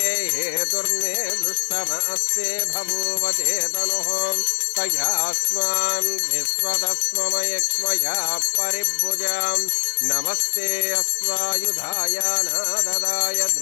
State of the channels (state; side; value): silent; right; 61 dB below the other